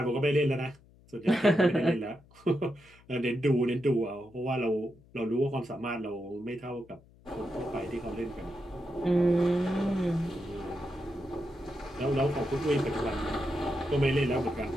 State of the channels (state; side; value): noise; left; hum, 27 dB below the sound